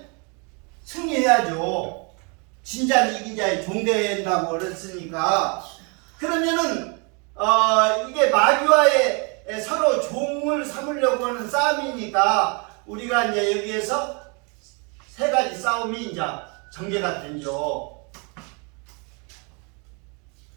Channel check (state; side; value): quieter; left; 33.4 dB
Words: 승리해야죠. 진자는 이긴 자의 종 된다고 그랬으니까 그러면은 이게 마귀와의 서로 종을 삼으려고 하는 싸움이니까 우리가 이제 여기에서 세 가지 싸움이 이제 전개가 되죠.